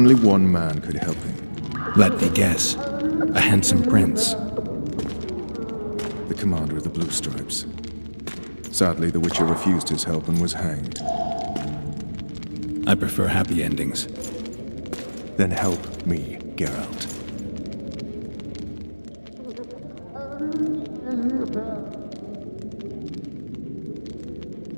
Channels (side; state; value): both; inverted; correlation -1.00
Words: one man could help him. Let me guess. A handsome prince. The commander of the Blue Stripes. Sadly, the witcher refused his help and was hanged. I prefer happy endings. Then help me, Geralt.